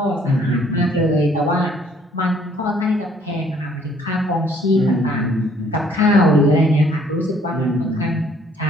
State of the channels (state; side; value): normal; both; correlation 0.61